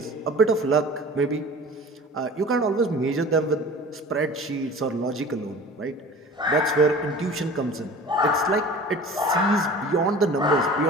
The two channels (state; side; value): normal; both; correlation 0.41